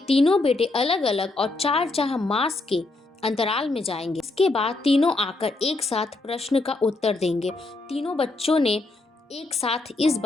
बेटे अलग अलग और 4 मास के अंतराल में जाएंगे। इसके बाद तीनों आकर एक साथ प्रश्न का उत्तर देंगे। तीनों बच्चों ने एक साथ इस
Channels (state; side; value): quieter; right; 3.1 dB